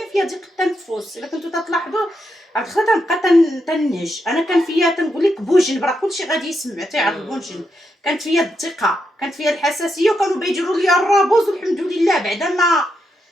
فيا ديك التنفس. الا كنتو تلاحظوا عاد خا تنبقى تنهج. انا كان فيا تنقول لك بوجن، راه كلشي غادي يسمع تيعرف بوجن. كانت فيا الثقه، كانت فيا الحساسيه، وكانوا بيديروا لي الرابوز والحمد لله بعدا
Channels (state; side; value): normal; both; correlation 0.82